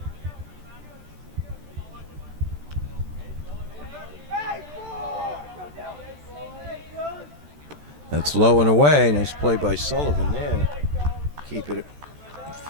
That's low and away. Nice play by Sullivan there. Keep it in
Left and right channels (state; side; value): late; left; 14 ms